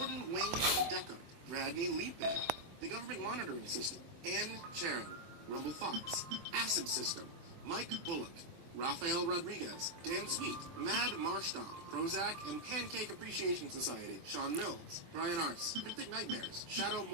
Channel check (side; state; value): left; late; 24 ms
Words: Wayne Decker, Radney Leapbear, The Government Monitoring System, Ann Charon, Rumble Fox, Acid System, Mike Bullock, Rafael Rodriguez, Dan Sweet, Mad Marstomp, Prozac, and Pancake Appreciation Society, Sean Mills, Brian Arce, Cryptic Nightmares, Shadow